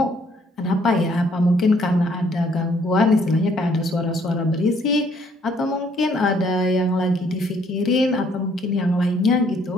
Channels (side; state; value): both; normal; correlation 0.65